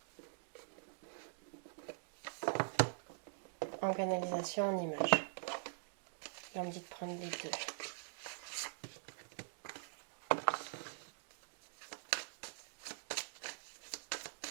En canalisation, en image. Là, on me dit de prendre les deux.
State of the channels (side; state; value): left; silent; digital silence